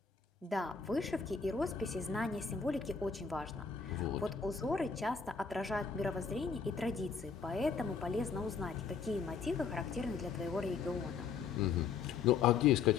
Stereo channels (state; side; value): quieter; right; 5.7 dB